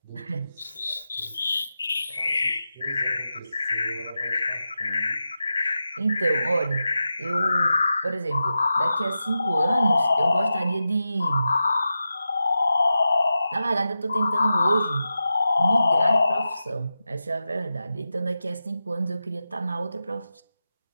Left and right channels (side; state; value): both; inverted; correlation -0.91